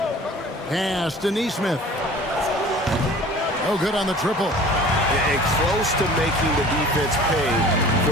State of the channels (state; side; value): normal; both; correlation 0.45